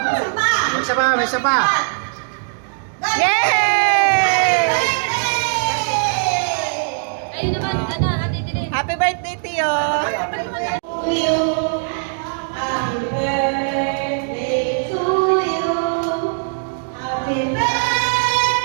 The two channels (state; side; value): silent; left; digital silence